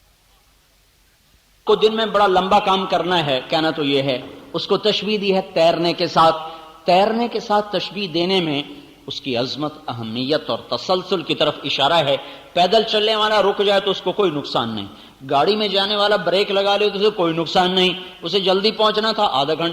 کو دن میں بڑا لمبا کام کرنا ہے. کہنا تو یہ ہے، اس کو تشبیہ دی ہے تیرنے کے ساتھ. تیرنے کے ساتھ تشبیہ دینے میں اس کی عظمت، اہمیت اور تسلسل کی طرف اشارہ ہے. پیدل چلنے والا رک جائے تو اس کو کوئی نقصان نہیں، گاڑی میں جانے والا بریک لگا لے تو اسے کوئی نقصان نہیں. اسے جلدی پہنچنا تھا، آدھا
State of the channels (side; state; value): both; identical; correlation 1.00